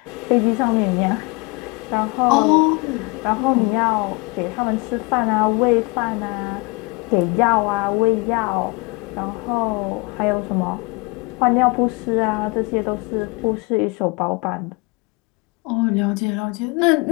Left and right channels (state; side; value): quieter; right; 27.2 dB